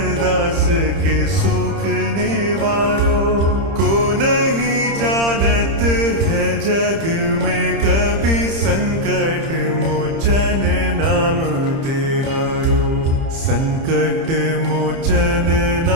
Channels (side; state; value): left; late; 30 ms